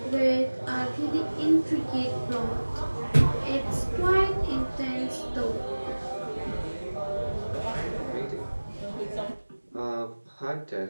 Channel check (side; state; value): both; inverted; correlation -1.00